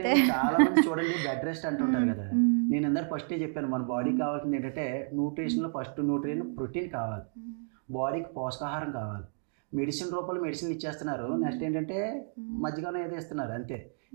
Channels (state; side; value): silent; left; 57 dB below the other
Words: చాలా మంది చూడండి బెడ్ రెస్ట్ అంటుంటారు కదా. నేను అందరు ఫస్టే చెప్పాను, మన బాడీకి కావాల్సింది ఏంటంటే న్యూట్రిషన్లో ఫస్ట్ న్యూట్రియన్ ప్రోటీన్ కావాలి, బాడీకి పోషకాహారం కావాలి. మెడిసిన్ రూపంలో మెడిసిన్లు ఇచ్చేస్తున్నారు. నెక్స్ట్ ఏంటంటే మధ్యగానే ఏదో ఇస్తున్నారు అంతే.